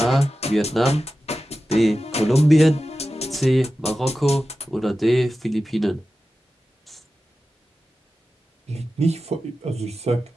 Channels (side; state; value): both; normal; correlation 0.93